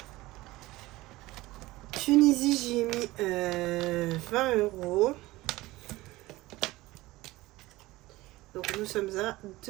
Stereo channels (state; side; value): quieter; left; 19.0 dB